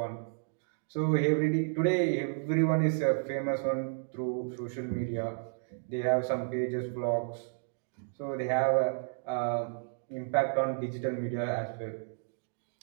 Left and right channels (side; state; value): left; silent; digital silence